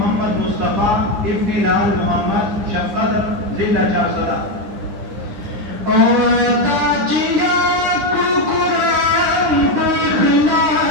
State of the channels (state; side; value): late; left; 9.8 ms